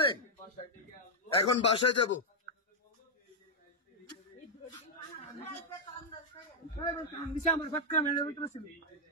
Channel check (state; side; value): normal; both; correlation -0.03